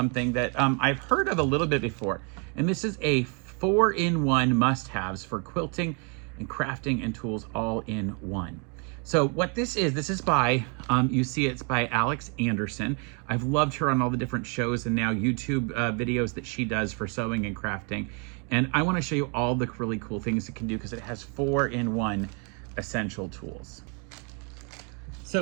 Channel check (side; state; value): left; quieter; 36.0 dB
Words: that I've heard of a little bit before. And this is a 4-in-1 must-haves for quilting and crafting and tools all in one. So what this is by, you see it's by Alex Anderson. I've loved her on all the different shows and now YouTube videos that she does for sewing and crafting. And I want to show you all the really cool things it can do because it has 4-in-1 essential tools.